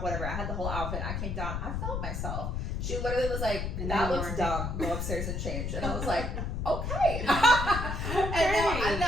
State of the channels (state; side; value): noise; left; rumble, 2 dB below the sound